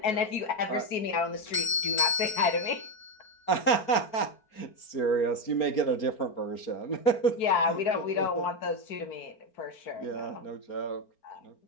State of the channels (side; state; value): right; late; 4.3 ms